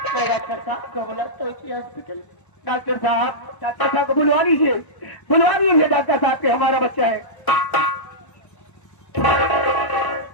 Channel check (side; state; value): right; late; 1.0 ms